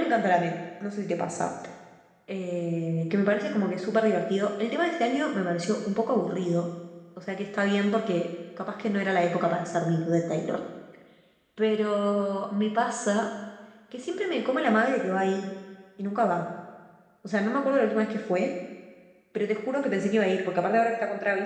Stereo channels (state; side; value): identical; both; correlation 1.00